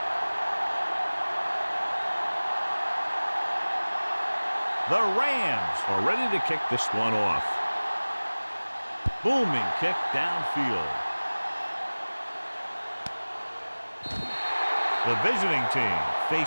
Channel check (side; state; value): both; inverted; correlation -1.00